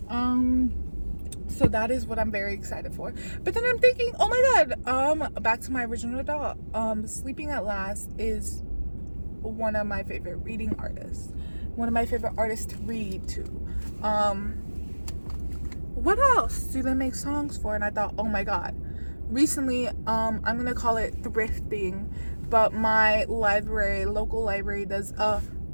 So that is what I'm very excited for. But then I'm thinking, oh my god, back to my original thought. Sleeping at Last is one of my favorite reading artists. One of my favorite artists to read to. What else do they make songs for? And I thought, oh my god. Recently, I'm gonna call it thrifting, but my local library does a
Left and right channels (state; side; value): inverted; both; correlation -1.00